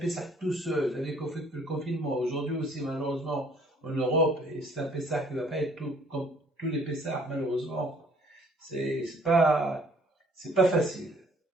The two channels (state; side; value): normal; both; correlation 0.59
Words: tout seul, avec le confinement. Aujourd'hui aussi, malheureusement, en Europe, et c'est un Pessah qui ne va pas être tout, comme tous les Pessahs, malheureusement. C'est pas facile.